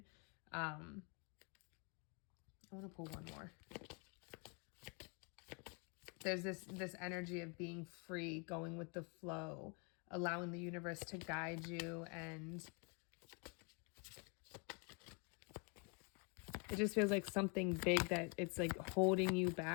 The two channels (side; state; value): right; quieter; 34.9 dB